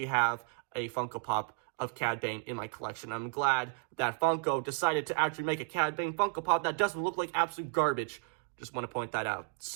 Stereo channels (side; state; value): left; quieter; 38.4 dB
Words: have a Funko Pop of Cad Bane in my collection. I'm glad that Funko decided to actually make a Cad Bane Funko Pop that doesn't look like absolute garbage. Just want to point that out.